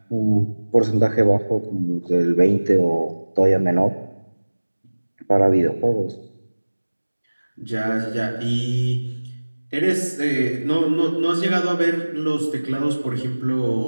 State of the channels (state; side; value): inverted; both; correlation -1.00